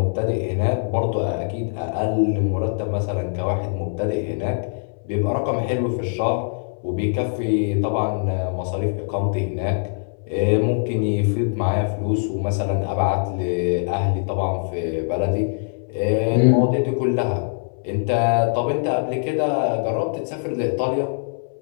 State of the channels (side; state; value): right; silent; 64 dB below the other